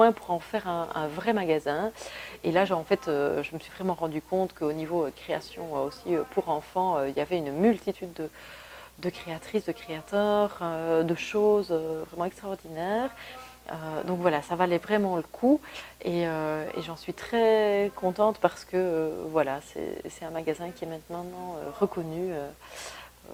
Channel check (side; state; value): both; identical; correlation 1.00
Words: pour en faire un vrai magasin. Et là, en fait, je me suis vraiment rendu compte qu'au niveau création aussi pour enfants, il y avait une multitude de créatrices, de créateurs, de choses vraiment extraordinaires. Donc voilà, ça valait vraiment le coup et j'en suis très contente parce que voilà, c'est un magasin qui est maintenant reconnu